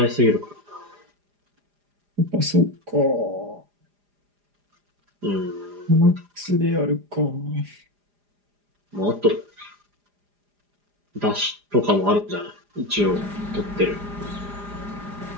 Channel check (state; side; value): late; left; 4.9 ms